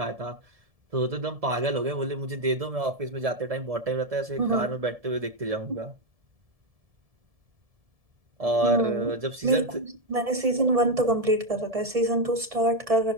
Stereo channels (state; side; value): late; left; 1.7 ms